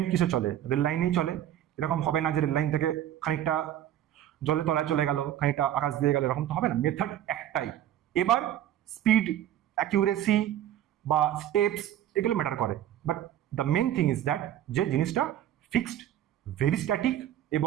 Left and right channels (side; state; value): left; quieter; 11.6 dB